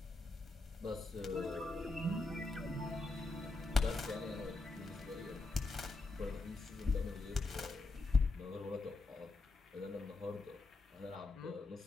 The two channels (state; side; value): quieter; right; 3.3 dB